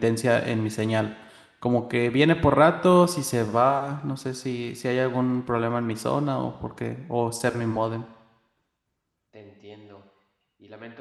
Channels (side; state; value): both; identical; correlation 1.00